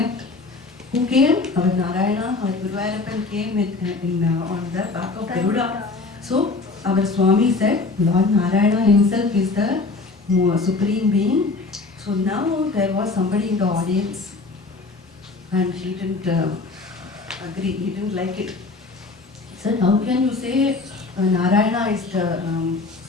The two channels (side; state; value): right; quieter; 3.7 dB